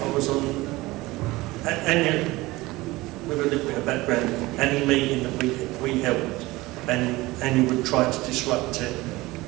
on Anya, with a little bit of background, any meeting that we held, and Anya would try to disrupt it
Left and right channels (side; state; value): left; quieter; 20.1 dB